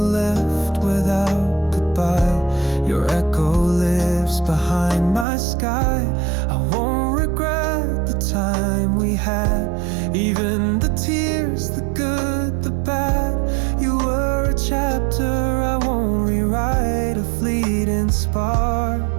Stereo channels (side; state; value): left; drops out; at 5.2 s